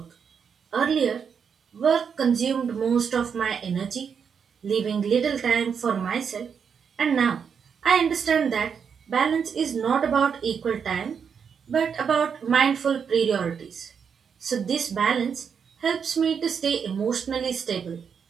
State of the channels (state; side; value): quieter; left; 6.8 dB